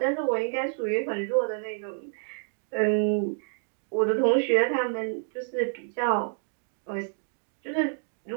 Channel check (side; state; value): left; silent; digital silence